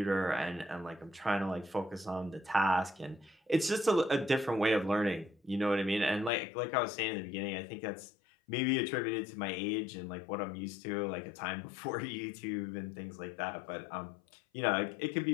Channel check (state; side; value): drops out; right; at 6.3 s